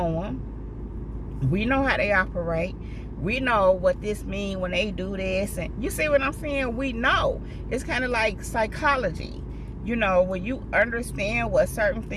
them. We know how they operate. We know what this means when they do this. And you see what I'm saying? We know. It's kind of like psychology. You know, when you understand what certain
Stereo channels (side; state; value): both; identical; correlation 1.00